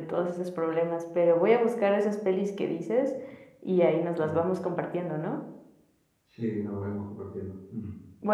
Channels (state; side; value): identical; both; correlation 1.00